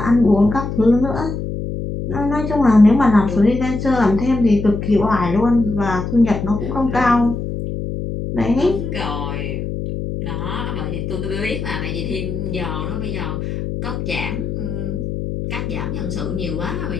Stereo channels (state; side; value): noise; left; hum, 4 dB below the sound